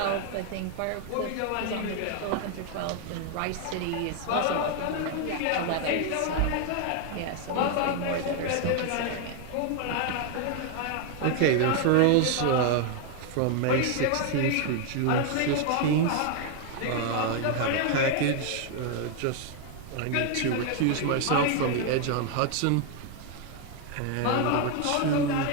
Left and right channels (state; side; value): different; both; correlation 0.01